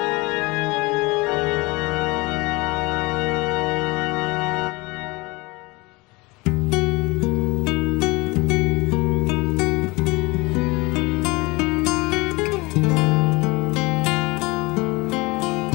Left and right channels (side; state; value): right; quieter; 24.5 dB